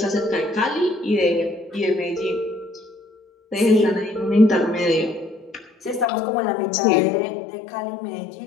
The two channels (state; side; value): drops out; right; at 6.1 s